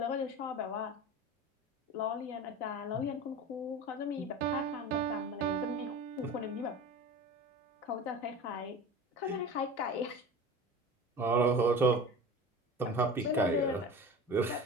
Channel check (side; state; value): both; normal; correlation 0.34